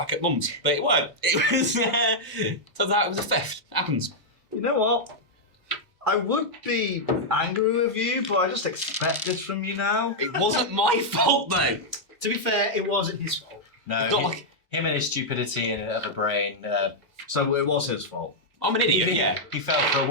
at Mum's, but it weren't. It was turns out it was a theft. It happens. You know what? I would be angry with you, but I just expect this from you now. It wasn't my fault though. To be fair, it wasn't his fault. No, It's not like him and his stupidity and of a brain. So it was his fault. I'm an idiot. Yeah. He fell for a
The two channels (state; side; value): normal; both; correlation -0.05